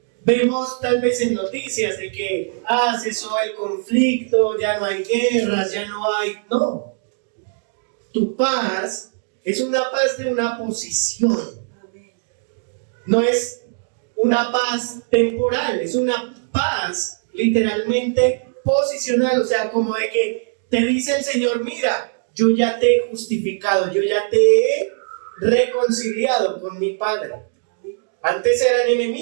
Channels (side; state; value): left; silent; digital silence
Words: vemos tal vez en noticias de que cesó el conflicto, ya no hay guerras, ya no hay... No, tu paz es una paz de una posición. No es una paz temporal, es una paz literalmente posicional, o sea, como de que te dice el Señor, mira, yo ya te he justificado, yo ya te he reconciliado con mi Padre. Antes eran